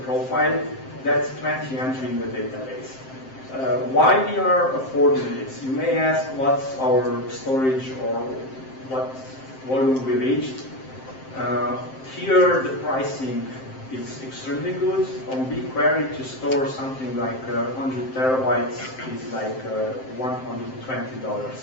profile, that's 20 entry in the database. Why we are affording this? You may ask what's our storage or what volume we reached. Here the pricing is extremely good. On BigQuery to store something like 100 terabytes is like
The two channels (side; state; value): right; late; 7.6 ms